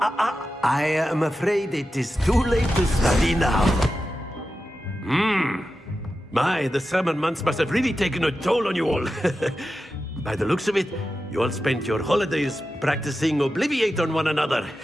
am afraid it is too late to study now. My, the summer months must have really taken a toll on you all. By the looks of it, you all spent your holidays practicing Obliviate on one another.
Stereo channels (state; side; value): normal; both; correlation 0.91